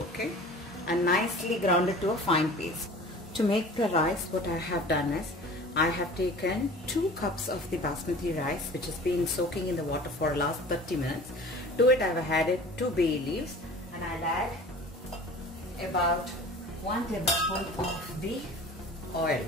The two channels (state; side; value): normal; both; correlation 0.42